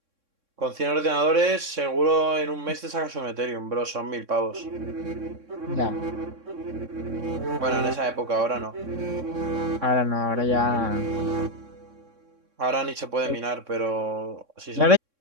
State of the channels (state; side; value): late; left; 3.6 ms